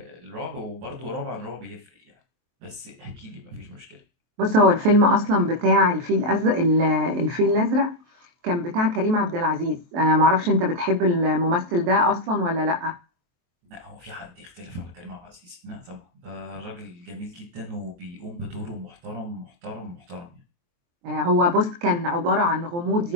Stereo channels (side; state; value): left; late; 23 ms